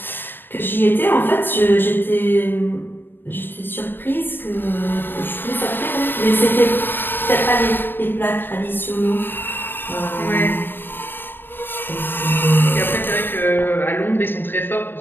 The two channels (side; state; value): right; late; 0.096 ms